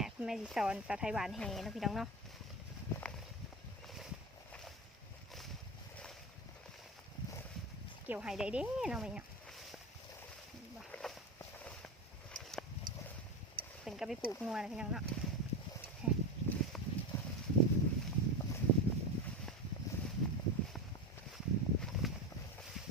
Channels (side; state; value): both; normal; correlation 0.20